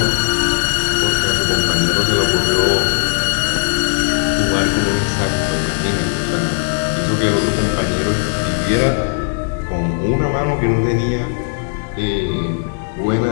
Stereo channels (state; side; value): silent; right; digital silence